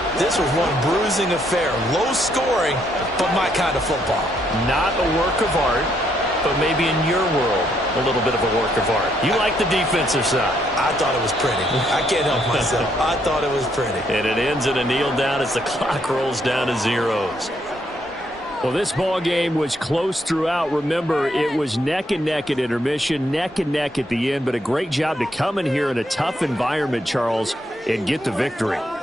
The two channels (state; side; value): normal; both; correlation 0.73